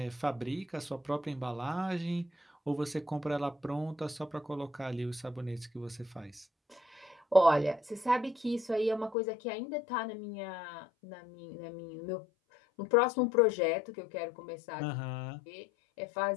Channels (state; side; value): drops out; right; at 9.2 s